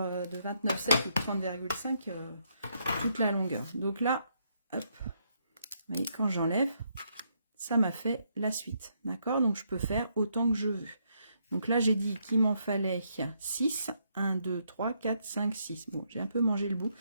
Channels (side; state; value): both; inverted; correlation -0.75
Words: de 29,7 ou 30,5 toute la longueur. Donc là, hop, vous voyez, quand j'enlève, ça m'a fait la suite. D'accord? Donc je peux faire autant que je veux. Donc là, j'ai dit qu'il m'en fallait 6. 1, 2, 3, 4, 5, 6. Bon, j'ai un peu mangé le bout